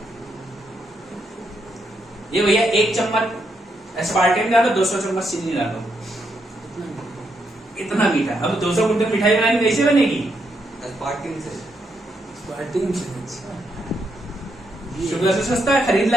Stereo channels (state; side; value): normal; both; correlation 0.79